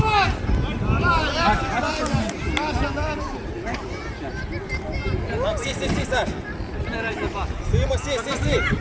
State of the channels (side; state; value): both; identical; correlation 1.00